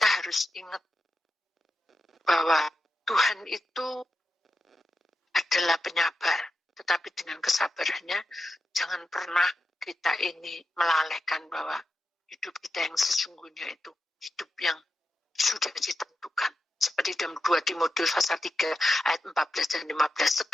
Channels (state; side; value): normal; both; correlation 0.89